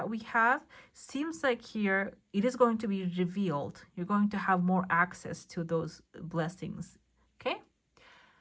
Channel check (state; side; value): identical; both; correlation 1.00